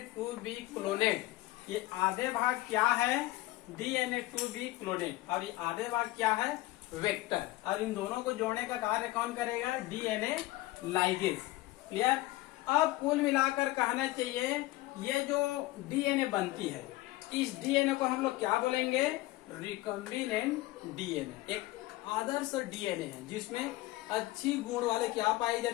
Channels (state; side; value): quieter; right; 18.3 dB